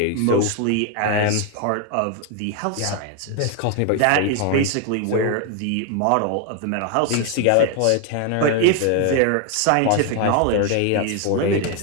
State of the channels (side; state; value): both; different; correlation 0.01